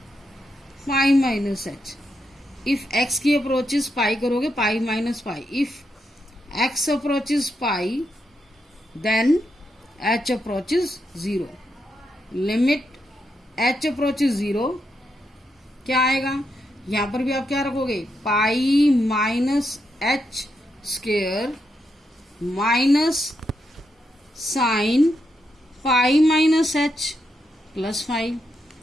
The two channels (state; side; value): normal; both; correlation 0.82